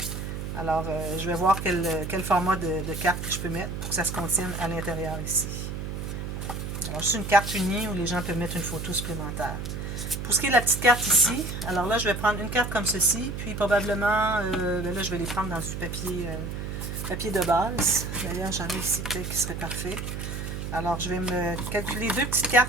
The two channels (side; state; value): right; noise; hum, 5 dB below the sound